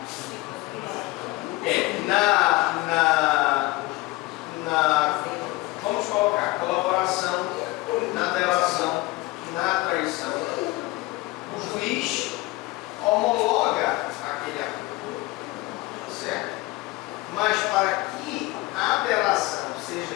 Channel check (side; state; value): right; quieter; 20.9 dB